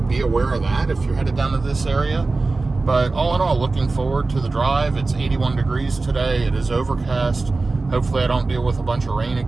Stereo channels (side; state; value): left; quieter; 3.6 dB